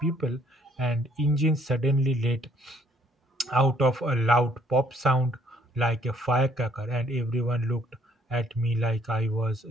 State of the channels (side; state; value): both; normal; correlation 0.64